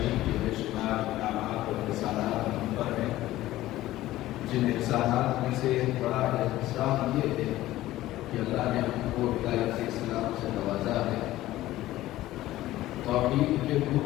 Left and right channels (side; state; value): right; quieter; 15.7 dB